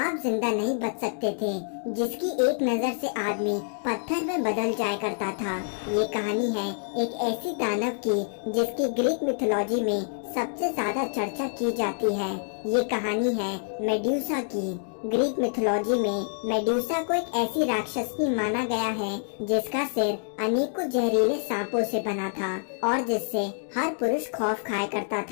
जिंदा नहीं बच सकते थे। जिसकी एक नजर से आदमी पत्थर में बदल जाया करता था। ये कहानी है एक ऐसी दानव की जिसकी ग्रीक मिथोलॉजी में सबसे ज्यादा चर्चा की जाती है। ये कहानी है मेडुसा की। ग्रीक मिथोलॉजी में मेडुसा को एक ऐसी राक्षसनी माना गया है जिसका सिर अनेकों जहरीले सांपों से बना था और जिससे हर पुरुष खौफ खाया करता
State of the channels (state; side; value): silent; right; digital silence